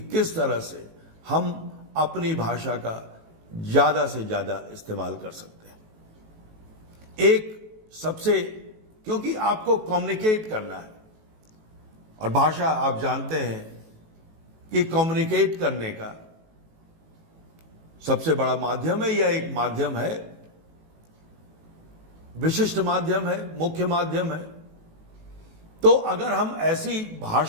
किस तरह से हम अपनी भाषा का ज्यादा से ज्यादा इस्तेमाल कर सकते हैं। एक सबसे, क्योंकि आपको कम्युनिकेट करना है, और भाषा आप जानते हैं कि कम्युनिकेट करने का सबसे बड़ा माध्यम है, या एक माध्यम है, विशिष्ट माध्यम है, मुख्य माध्यम है। तो अगर हम ऐसी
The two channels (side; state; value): left; late; 18 ms